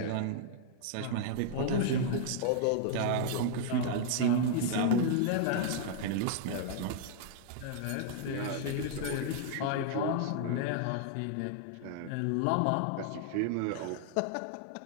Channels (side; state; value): both; different; correlation -0.01